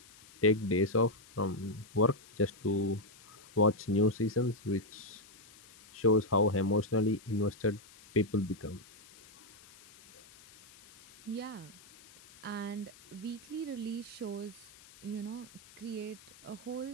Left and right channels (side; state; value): left; noise; hiss, 23 dB below the sound